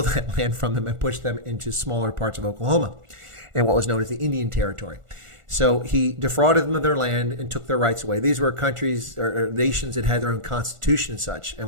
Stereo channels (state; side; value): late; left; 1.4 ms